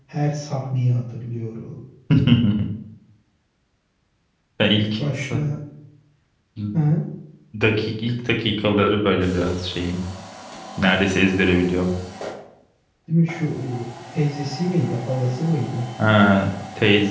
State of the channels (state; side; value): identical; both; correlation 1.00